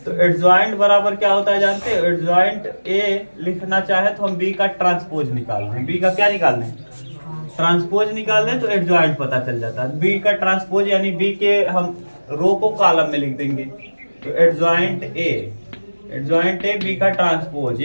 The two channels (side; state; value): both; inverted; correlation -1.00